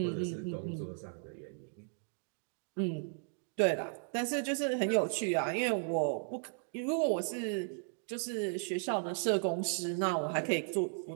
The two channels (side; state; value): left; silent; 54 dB below the other